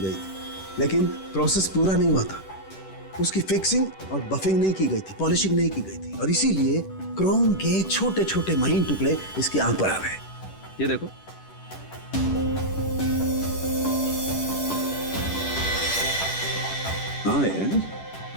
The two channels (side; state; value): right; late; 10 ms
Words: थी, लेकिन प्रोसेस पूरा नहीं हुआ था। उसकी फिक्सिंग और बफिंग नहीं की गई थी, पॉलिशिंग नहीं की गई थी, और इसीलिए क्रोम के छोटे छोटे महीन टुकड़े इसकी आंख पर आ गए। ये देखो। हाँ यार,